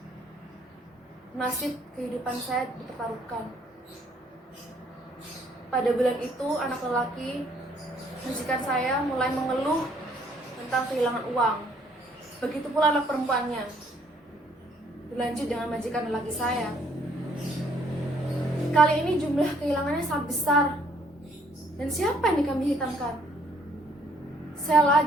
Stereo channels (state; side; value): normal; both; correlation 0.64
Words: nasib kehidupan saya dipertaruhkan. Pada bulan itu, anak lelaki majikan saya mulai mengeluh tentang kehilangan uang. Begitu pula anak perempuannya. Dilanjut dengan majikan lelaki saya. Kali ini jumlah kehilangannya sangat besar. Dan siapa yang dikambing hitamkan? Saya